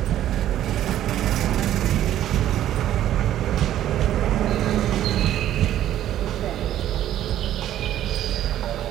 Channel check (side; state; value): left; quieter; 12.2 dB